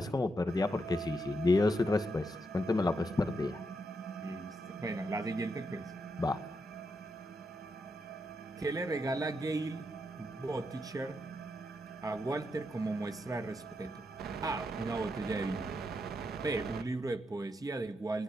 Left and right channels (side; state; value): both; normal; correlation 0.82